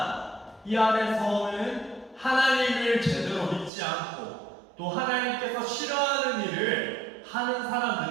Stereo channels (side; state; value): left; drops out; at 3.7 s